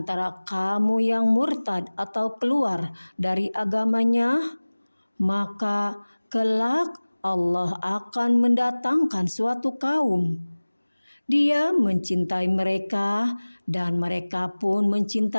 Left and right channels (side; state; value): both; inverted; correlation -1.00